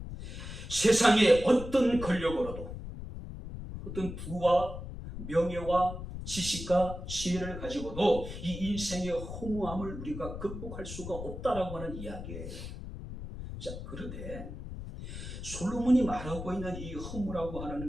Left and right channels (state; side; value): noise; left; rumble, 9 dB below the sound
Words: 세상의 어떤 권력으로도 어떤 부와 명예와 지식과 지혜를 가지고도 이 인생의 허무함을 우리가 극복할 수가 없다라고 하는 이야기예요. 자, 그런데 솔로몬이 말하고 있는 이 허무라고